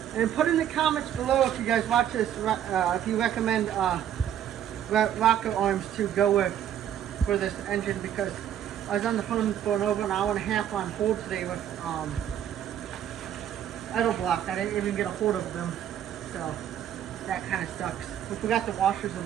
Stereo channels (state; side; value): quieter; left; 10.3 dB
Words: And put in the comments below if you guys watch this, if you recommend rocket arms to go with for this engine, because I was on the phone for over an hour and a half on hold today with idle block. I didn't even get a hold of them, so that kind of sucks. We forgot the washers